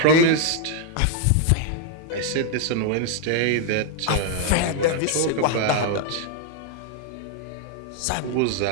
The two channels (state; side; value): different; both; correlation 0.00